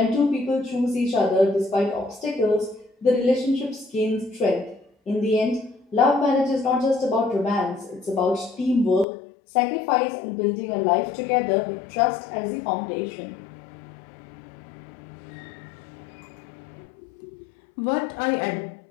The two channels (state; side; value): drops out; right; at 9.1 s